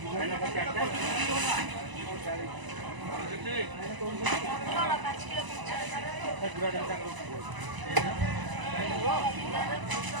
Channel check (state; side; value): late; left; 1.0 ms